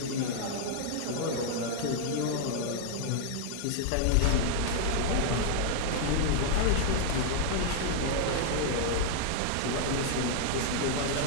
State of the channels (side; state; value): both; different; correlation -0.01